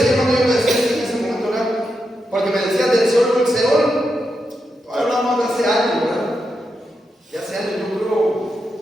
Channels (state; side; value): normal; both; correlation 0.86